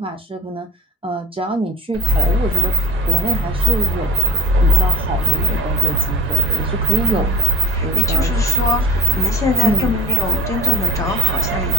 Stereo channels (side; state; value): both; normal; correlation 0.46